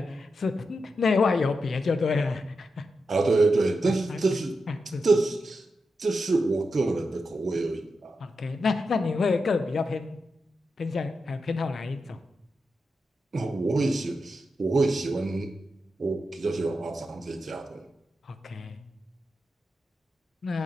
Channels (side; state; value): both; normal; correlation 0.88